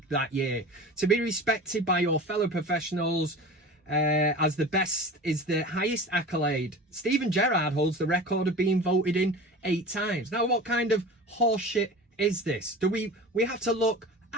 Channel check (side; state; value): both; normal; correlation 0.35